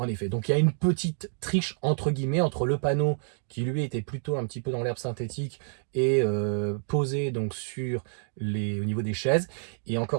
effet, donc il y a une petite triche entre guillemets entre le panneau qui lui était plutôt un petit peu dans l'herbe synthétique et posé donc sur au niveau des chaises. Et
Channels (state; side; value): silent; left; digital silence